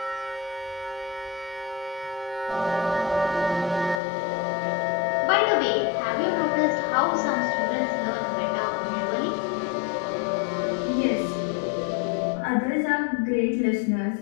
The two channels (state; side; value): drops out; right; at 4.0 s